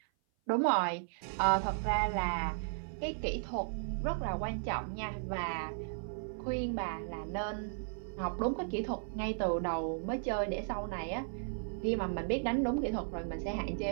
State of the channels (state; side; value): silent; left; 54 dB below the other